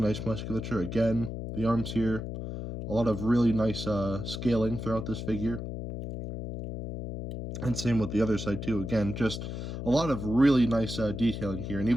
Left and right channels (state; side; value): noise; left; hum, 6 dB below the sound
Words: musculature. Again, the arms here, a lot of really nice scaling throughout this figure. And same with the other side too. Again, just a lot of really nice detailing here. And